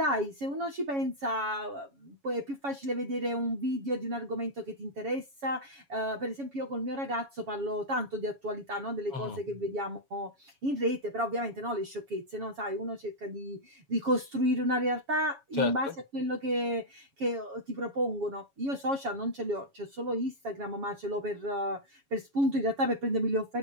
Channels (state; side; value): late; left; 7.2 ms